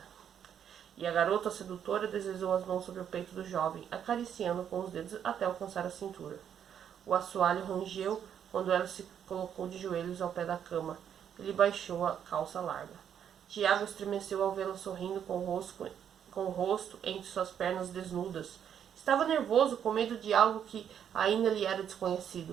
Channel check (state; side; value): quieter; left; 8.8 dB